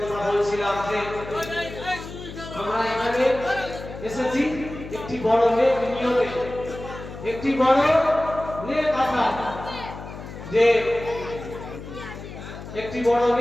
কথা বলছিলাম যে আমরা এখানে এসেছি একটি বড় নেক নিয়তে, একটি বড় নেক আশা, যে একটি বড়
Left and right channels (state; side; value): noise; left; hum, 12 dB below the sound